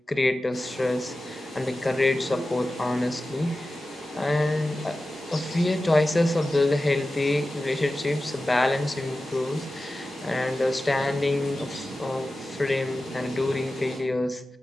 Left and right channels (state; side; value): normal; both; correlation 0.94